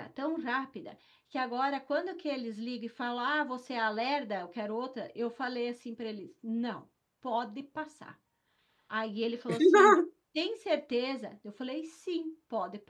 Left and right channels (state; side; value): identical; both; correlation 1.00